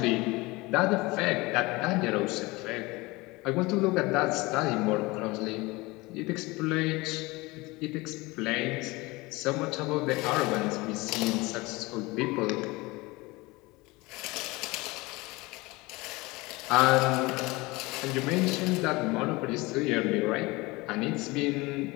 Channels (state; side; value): quieter; right; 22.8 dB